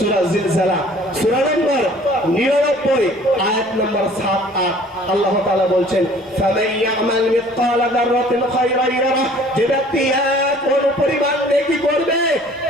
জিলজালা সূরা নম্বর 99 আয়াত নম্বর 7-8 আল্লাহ তাআলা বলছেন ফামান ইয়ামাল মিসকালা যাররাতিন খায়রান ইয়ারা, যে ব্যক্তি এক পরিমাণ নেকি করবে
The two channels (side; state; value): both; normal; correlation 0.52